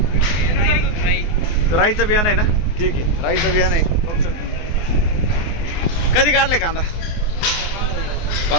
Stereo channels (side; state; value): right; late; 24 ms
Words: राईचं बियाणं आहे ना? ठीक आहे राईचं बियाणं आहे बघू शकतो तुम्ही. कधी काढले कांदा?